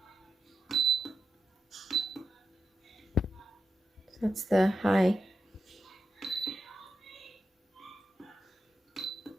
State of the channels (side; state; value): both; normal; correlation 0.90